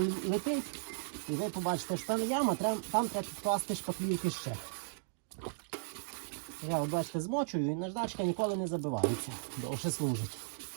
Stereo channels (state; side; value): silent; left; digital silence